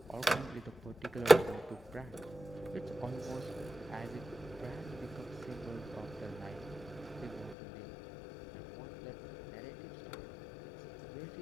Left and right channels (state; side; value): drops out; right; at 7.6 s